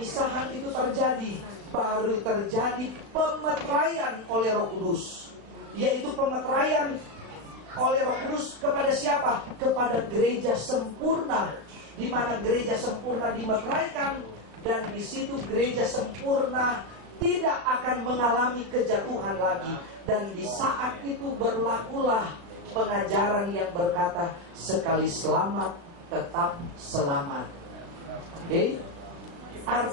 itu terjadi, baru terjadi pemeteraian oleh Roh Kudus. Yaitu pemeteraian oleh Roh Kudus kepada siapa? Kepada gereja sempurna. Di mana gereja sempurna dimeteraikan, dan di situ gereja sempurna tidak akan mengalami kejatuhan lagi. Dan di saat itu berlakulah pengajaran yang berkata sekali selamat tetap selamat. Oke?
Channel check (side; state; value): left; late; 36 ms